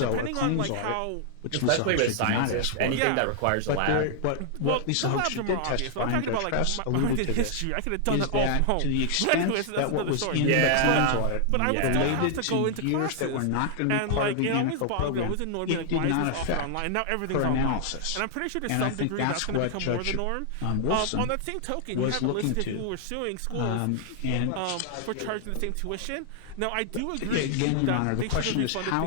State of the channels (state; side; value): different; both; correlation -0.01